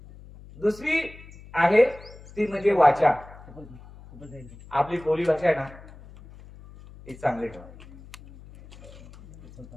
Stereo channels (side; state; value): left; noise; hum, 19 dB below the sound